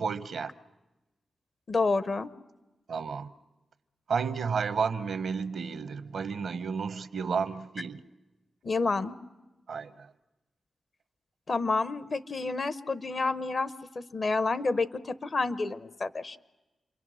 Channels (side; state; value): both; normal; correlation 0.86